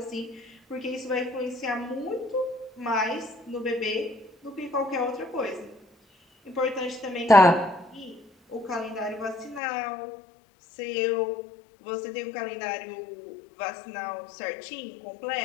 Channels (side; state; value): right; drops out; at 9.6 s